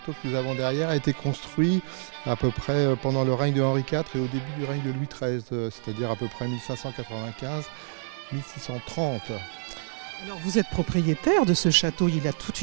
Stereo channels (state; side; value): silent; left; digital silence